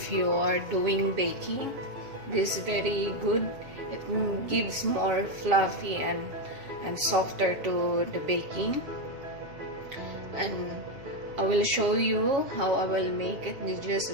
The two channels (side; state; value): left; late; 7.3 ms